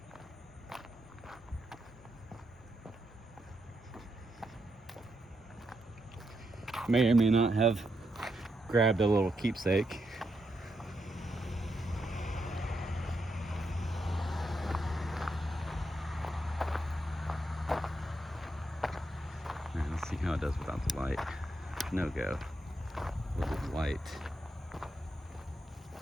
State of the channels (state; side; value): normal; both; correlation 0.82